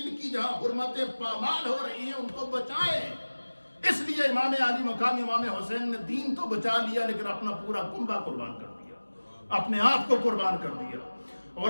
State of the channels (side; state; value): both; inverted; correlation -1.00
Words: کی جہاں حرمتیں پامال ہو رہی ہیں ان کو بچائیں. اس لیے امام علی مقام امام حسین نے دین تو بچا لیا، لیکن اپنا پورا کنبہ قربان کر دیا، اپنے آپ کو قربان کر دیا،